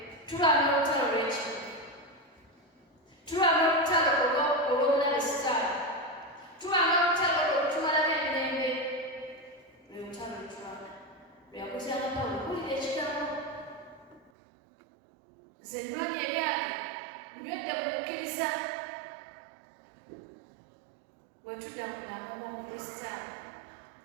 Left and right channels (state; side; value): drops out; left; at 14.3 s